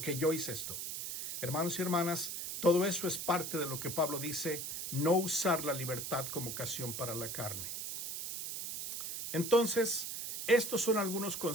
yo hice esto. Hermanos y hermanas, todo eso es parte de lo que Pablo dice, no usar la libertad como ocasión para la carne. Entonces, estos son algunos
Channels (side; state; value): right; noise; hiss, 5 dB below the sound